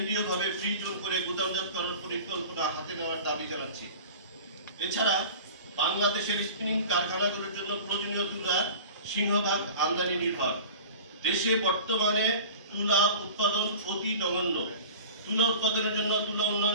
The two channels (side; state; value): both; inverted; correlation -0.38